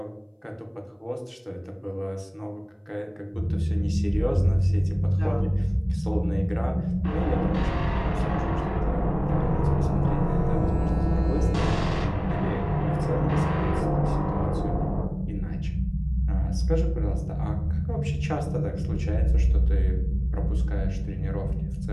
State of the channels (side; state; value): both; identical; correlation 1.00